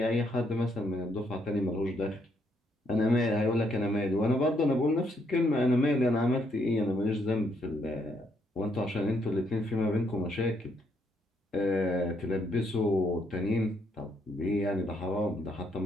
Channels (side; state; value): both; normal; correlation 0.73